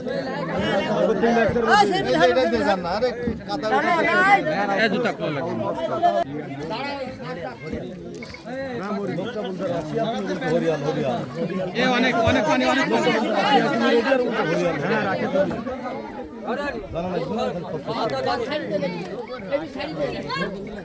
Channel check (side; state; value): both; identical; correlation 1.00